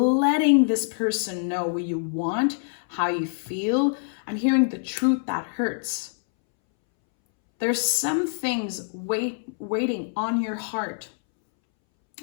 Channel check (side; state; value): right; silent; 62 dB below the other